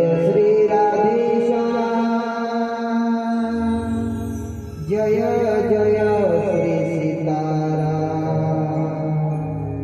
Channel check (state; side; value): identical; both; correlation 1.00